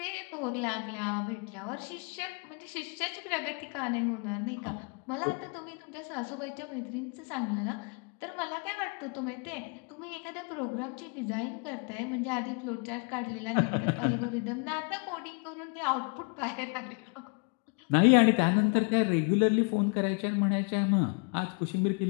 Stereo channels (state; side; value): quieter; right; 36.2 dB